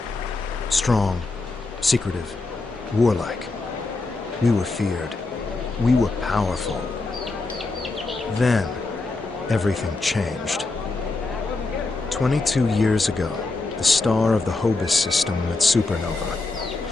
Strong, secretive, warlike. We were feared. We were powerful. Then, everything changed. 22 years ago, the star of the Hobus system went supernova.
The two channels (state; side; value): quieter; right; 3.4 dB